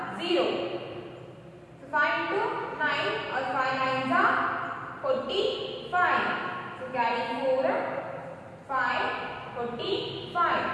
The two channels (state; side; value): identical; both; correlation 1.00